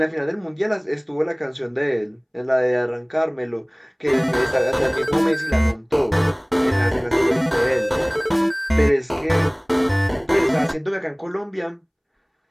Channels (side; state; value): both; identical; correlation 1.00